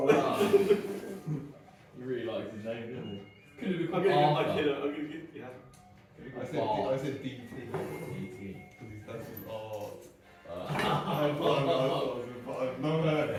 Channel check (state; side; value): identical; both; correlation 1.00